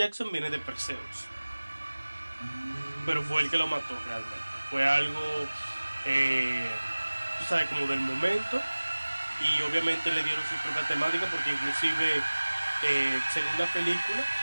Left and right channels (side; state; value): both; inverted; correlation -1.00